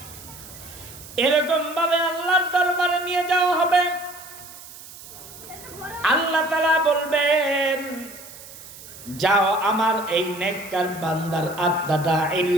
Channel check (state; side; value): noise; right; hiss, 16 dB below the sound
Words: এরকম ভাবে আল্লাহর দরবারে নিয়ে যাওয়া হবে। আল্লাহ তাআলা বলবেন, যাও আমার এই নেককার বান্দার আত্মাটা